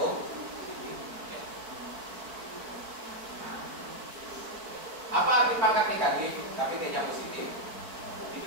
Apa arti pangkat negatif tapi T-nya positif? Itu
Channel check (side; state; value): left; late; 4.4 ms